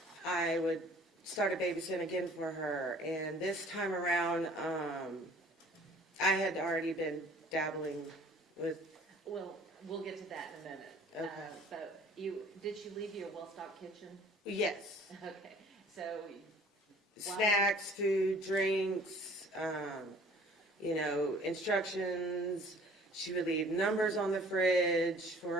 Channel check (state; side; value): normal; both; correlation 0.52